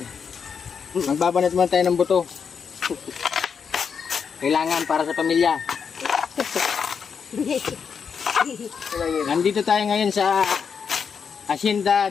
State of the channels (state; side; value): quieter; right; 6.4 dB